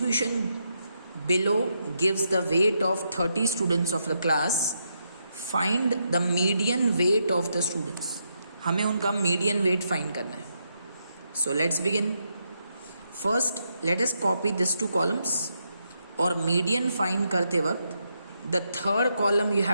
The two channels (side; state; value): both; inverted; correlation -0.81